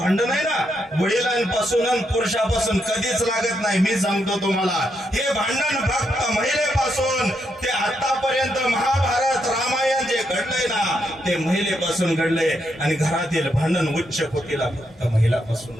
आहे ना, वडिलांपासून आणि पुरुषापासून कधीच लागत नाही. मी सांगतो तुम्हाला, हे भांडण फक्त महिलेपासून ते आतापर्यंत महाभारत रामायण जे घडलंय ना ते महिलेपासून घडलंय. आणि घरातील भांडण उच्च कोटीला फक्त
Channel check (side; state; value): both; normal; correlation 0.79